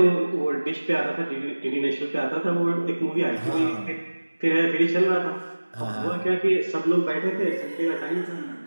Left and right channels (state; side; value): inverted; both; correlation -1.00